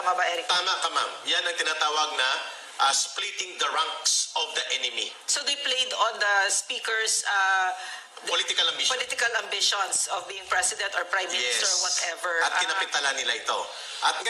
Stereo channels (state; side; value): identical; both; correlation 1.00